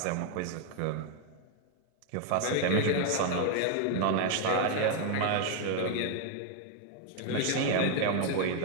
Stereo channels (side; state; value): both; different; correlation 0.01